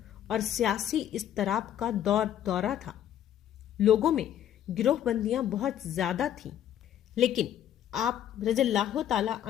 اور سیاسی اضطراب کا دورہ تھا۔ لوگوں میں گروہ بندیاں بہت زیادہ تھیں، لیکن آپ رضی اللہ تعالی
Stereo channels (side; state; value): right; quieter; 10.7 dB